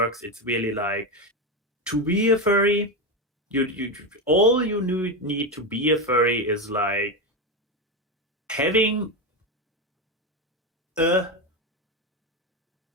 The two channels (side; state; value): both; normal; correlation 0.14